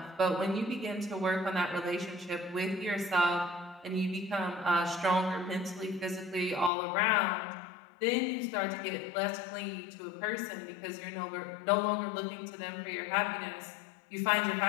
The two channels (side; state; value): right; drops out; at 6.7 s